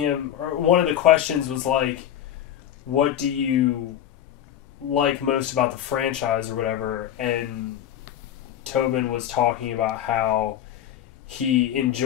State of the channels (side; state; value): right; quieter; 10.8 dB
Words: or one of the questions was like, what do you like most about the franchise or whatever? And Tobin was talking about how he